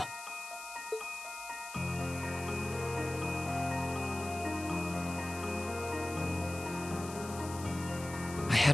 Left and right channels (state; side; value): noise; left; hiss, 12 dB below the sound